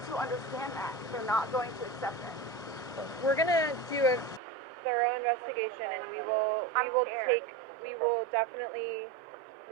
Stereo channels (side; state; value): left; drops out; at 4.4 s